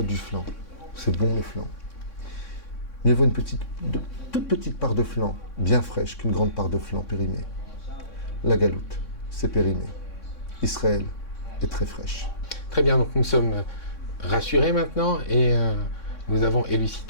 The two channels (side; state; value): right; late; 3.6 ms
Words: du flan. C'est bon le flan. Mieux vaut toute petite part de flan, bien fraîche, qu'une grande part de flan périmée. La Galoute, c'est périmé. Israël est très fraîche. Très bien, donc nous sommes rassurés maintenant et nous avons